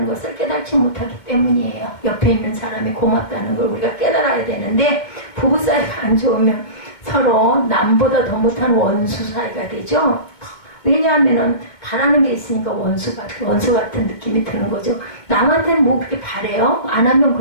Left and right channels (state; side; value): late; right; 2.2 ms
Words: 것을 깨닫지 못하기 때문이에요. 옆에 있는 사람이 고맙다는 걸 우리가 깨달아야 되는데 부부 사이가 안 좋으면 서로 남보다 더 못한 원수 사이가 되죠. 왜냐하면은 바라는 게 있으니까 원수 같은 느낌이 드는 거죠. 남한테는 뭐 그렇게 바래요? 안 하면